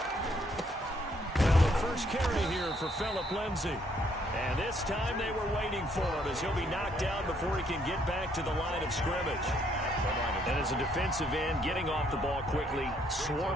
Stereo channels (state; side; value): normal; both; correlation 0.69